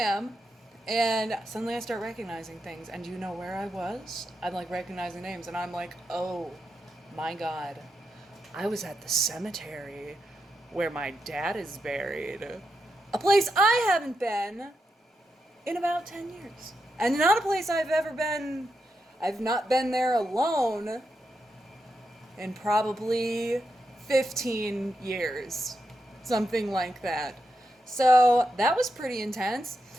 And suddenly I start recognizing things. And do you know where I was? I'm recognizing names. And I'm like, oh my God. I was at the cemetery where my dad is buried. A place I haven't been in about 10 years. And not a place I've ever been. I've not been there alone in probably 15 years. Something like that. So that was pretty intense.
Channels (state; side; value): normal; both; correlation 0.85